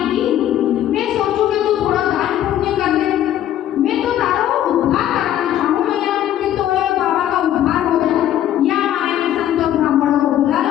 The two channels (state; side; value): quieter; right; 11.7 dB